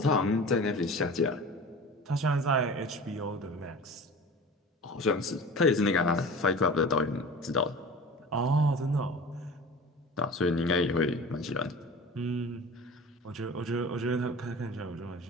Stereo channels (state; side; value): normal; both; correlation 0.37